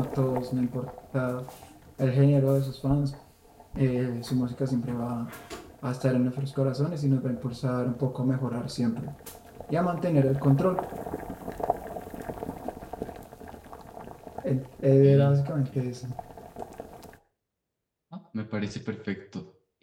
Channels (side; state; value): both; identical; correlation 1.00